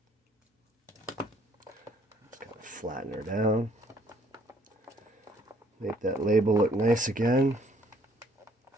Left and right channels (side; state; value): both; normal; correlation 0.63